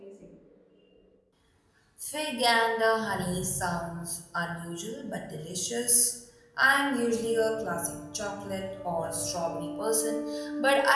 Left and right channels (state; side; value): identical; both; correlation 1.00